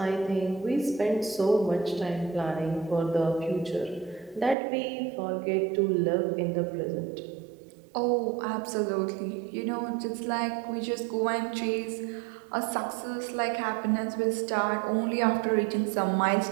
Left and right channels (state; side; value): drops out; left; at 4.5 s